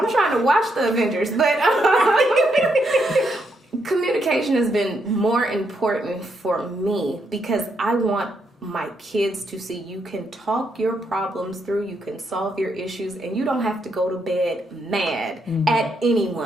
trying to watch the Avengers. But communication has been more important for me because I want my kids to see you can talk your problems through, you can solve your issues, and you don't have to go to bed mad at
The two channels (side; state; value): both; normal; correlation 0.78